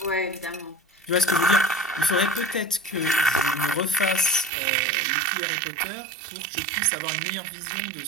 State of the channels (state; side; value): drops out; left; at 4.5 s